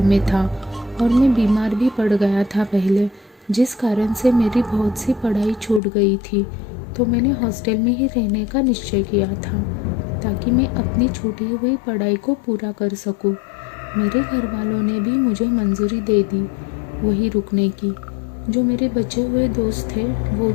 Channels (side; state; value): right; drops out; at 5.8 s